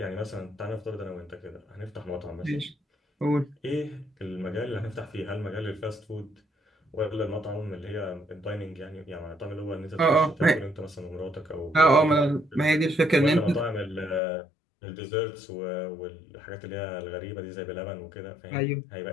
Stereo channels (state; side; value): drops out; right; at 14.2 s